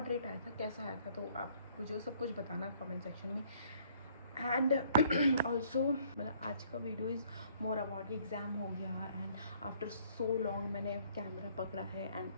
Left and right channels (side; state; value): both; inverted; correlation -0.62